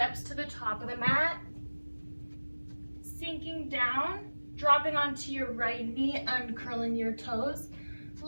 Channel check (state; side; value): inverted; both; correlation -1.00